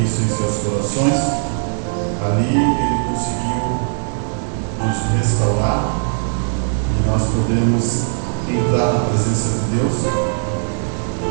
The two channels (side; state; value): left; silent; 67 dB below the other